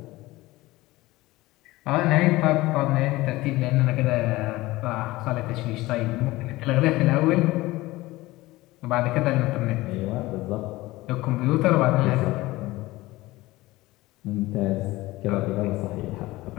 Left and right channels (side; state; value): right; quieter; 19.1 dB